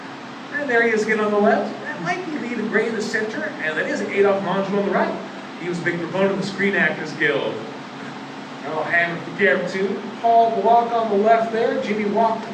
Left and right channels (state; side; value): identical; both; correlation 1.00